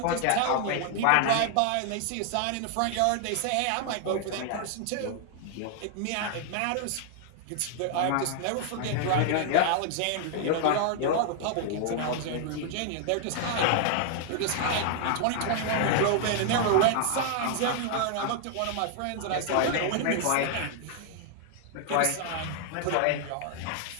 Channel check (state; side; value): different; both; correlation 0.00